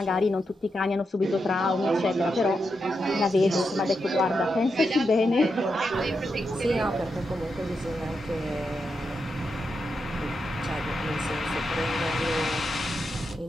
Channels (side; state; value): both; normal; correlation 0.85